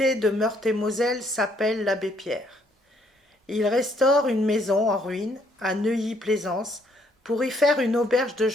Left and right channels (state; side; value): normal; both; correlation 0.68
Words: de Meurthe-et-Moselle s'appelle l'abbé Pierre. Il restaure une maison en ruine à Neuilly-Plaisance pour y faire une auberge de